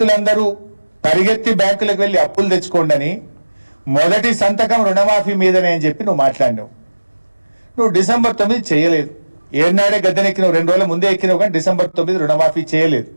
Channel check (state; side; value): inverted; both; correlation -1.00